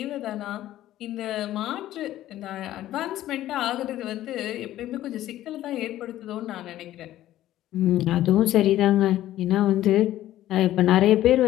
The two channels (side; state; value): right; quieter; 13.8 dB